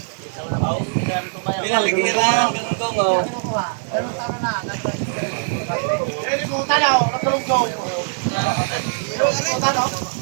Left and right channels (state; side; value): silent; left; digital silence